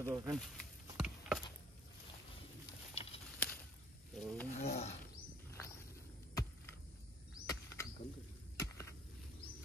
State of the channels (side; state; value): both; normal; correlation 0.58